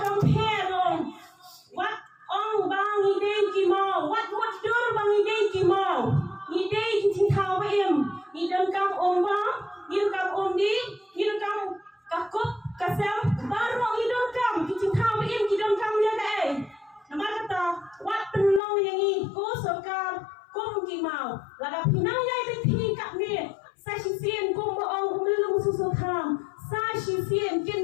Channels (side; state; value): right; drops out; at 18.6 s